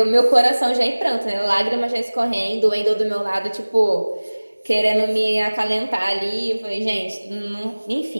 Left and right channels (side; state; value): both; inverted; correlation -1.00